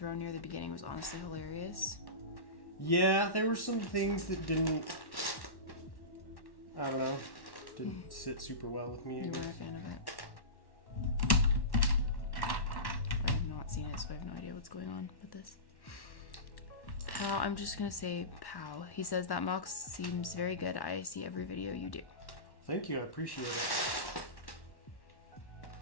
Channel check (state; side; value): late; right; 1.1 ms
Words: near the beginning was honestly hilarious. Yeah, there were some things that didn't sit super well with me. You were a fan of it. I have not seen it, so I have no idea what's going on with this. Pow, I'm just gonna say Pow. He says that mock seems very good. I see every video you do. Thank you, I appreciate it.